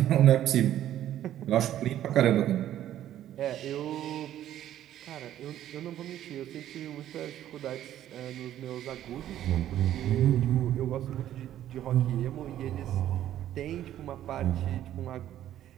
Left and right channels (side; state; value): left; quieter; 12.0 dB